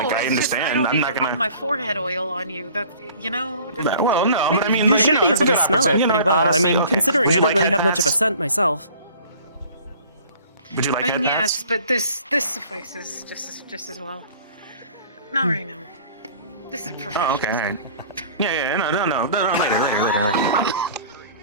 I it's just, understand. don't I'm need not to rub gonna. my forehead oil on you. That's, Well, no, but I mean, You like, should be it's able to good smell it option, pretty well. I honestly, mean, okay. considering Would I you don't like really head have much of a pats? scent myself. Would you like I head mean, pats? yes, but this suffices just as well. Not right now. This is professional. Oh, okay, alright. Yeah, no, later.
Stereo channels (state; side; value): inverted; both; correlation -0.49